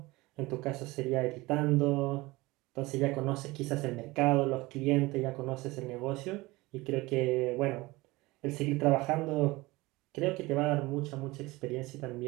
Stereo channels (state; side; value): quieter; left; 21.3 dB